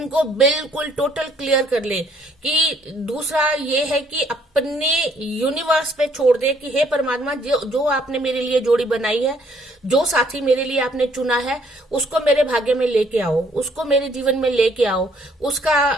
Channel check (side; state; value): both; normal; correlation 0.64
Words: बिल्कुल टोटल क्लियर कर ले। कि दूसरा ये है कि अपने यूनिवर्स पे छोड़ दे कि हे परमात्मा, जो आपने मेरे लिए जोड़ी बनाई है, जो साथी मेरे लिए आपने चुना है, उसको मेरे भाग्य में लेके आओ, उसको मेरे जीवन में लेके आओ,